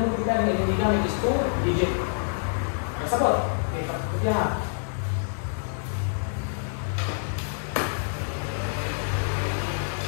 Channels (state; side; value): silent; right; 60 dB below the other